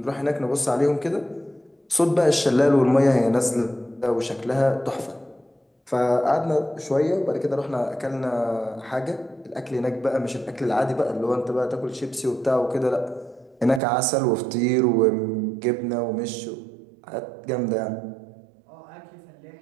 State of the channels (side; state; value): left; drops out; at 13.8 s